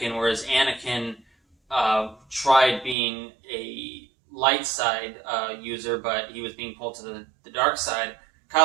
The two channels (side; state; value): left; drops out; at 3.0 s